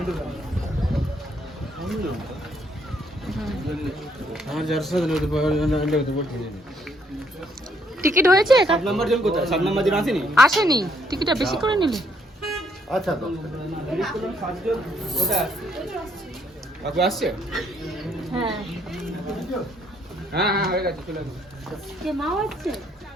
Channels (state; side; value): normal; both; correlation 0.70